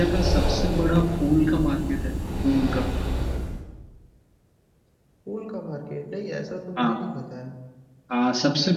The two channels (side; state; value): both; identical; correlation 1.00